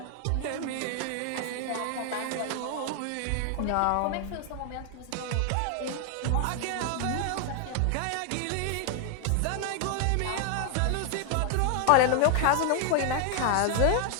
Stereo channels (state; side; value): different; both; correlation 0.00